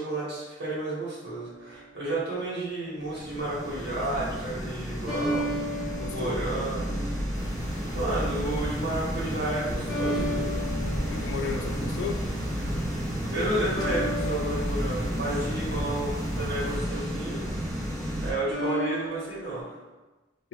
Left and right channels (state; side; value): normal; both; correlation 0.55